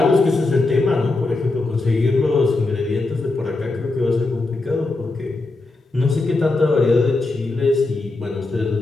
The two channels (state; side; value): quieter; right; 3.2 dB